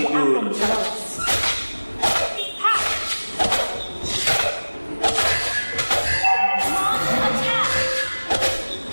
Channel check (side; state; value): both; inverted; correlation -1.00